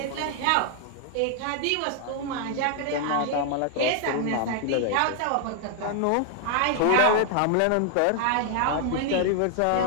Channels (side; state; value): both; different; correlation 0.00